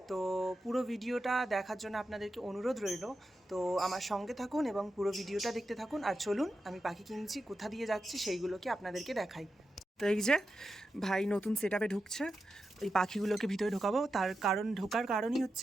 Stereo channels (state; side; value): normal; both; correlation 0.89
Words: তো পুরো ভিডিওটা দেখার জন্য আপনাদেরকে অনুরোধ রইল। তো আমার সঙ্গে থাকুন এবং পুরো ভিডিওটা দেখতে থাকুন। আর চলুন আমি পাখি কিনছি, কোথা দিয়ে যাচ্ছি সেইগুলোকে আপনাদেরকে দেখাই। তো এই যে ভাই নতুন সেট আপে ঢুকছে, এই পাখিগুলোকে ভিতরে ঢোকাবো। ঢোকার কারণই